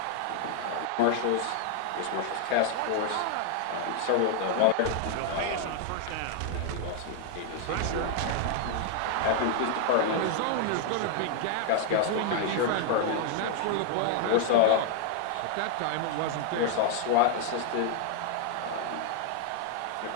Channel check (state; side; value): different; both; correlation 0.00